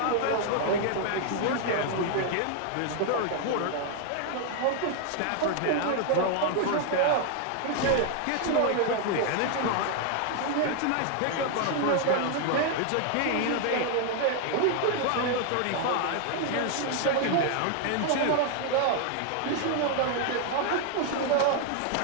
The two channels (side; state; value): both; different; correlation 0.00